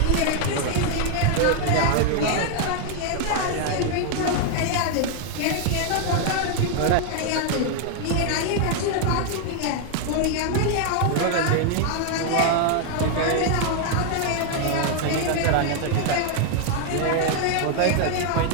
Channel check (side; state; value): both; different; correlation 0.00